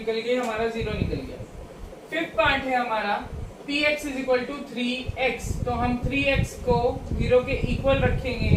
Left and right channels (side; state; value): both; identical; correlation 1.00